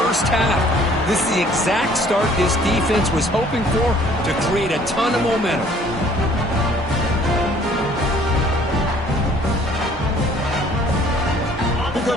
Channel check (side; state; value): both; normal; correlation 0.57